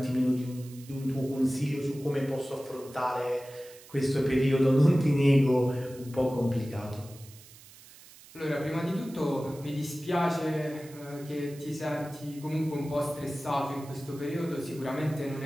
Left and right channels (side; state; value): right; noise; hiss, 21 dB below the sound